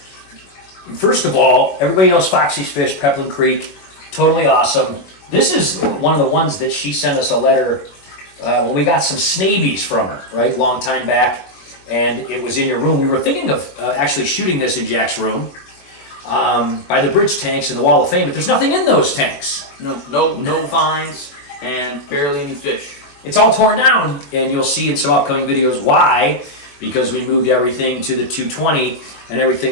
first of all, everybody knows Foxie's Fish, Peplin Creek, totally awesome. This is one of the ones that she sent us a letter when we got some snabies from her, right, long time back, and it was in your room. We were thinking of actually shooting this in Jack's room by the bridge tanks in the Wall of Fame, but there's nothing in those tanks. No vines and barely any fish. It's all torn down, and you'll see in some upcoming videos why, because we moved everything to the 220 and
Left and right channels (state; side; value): late; right; 21 ms